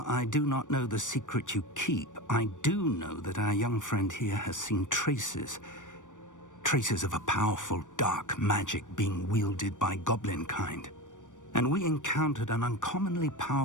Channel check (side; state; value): right; late; 0.87 ms